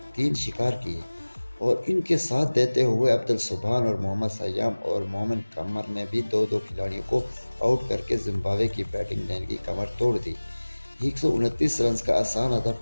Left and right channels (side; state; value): both; inverted; correlation -1.00